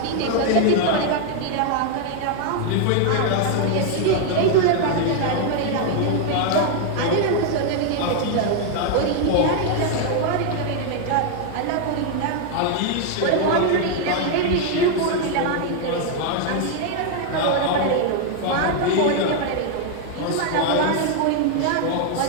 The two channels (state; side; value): different; both; correlation 0.00